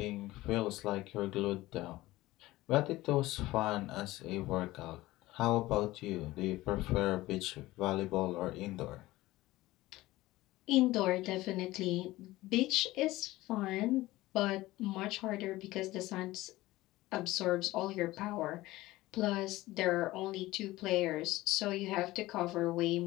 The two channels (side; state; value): right; quieter; 17.9 dB